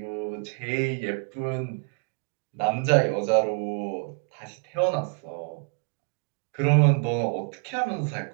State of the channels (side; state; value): left; quieter; 38.3 dB